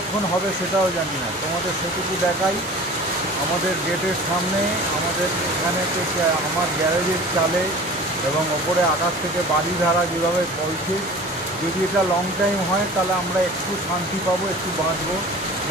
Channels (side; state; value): both; normal; correlation 0.41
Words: হবে সেটাও জানি না। তোমাদের সেটুকু দেখাই, আমাদের গেটের সামনে, আমাদের এখানে আমার গ্যারেজের চালে এবং ওপরে আকাশ থেকে বাড়ি ধারা যেভাবে বলছে, যদি এটা লং টাইম হয় তাহলে আমরা একটু শান্তি পাবো, একটু বাঁচবো,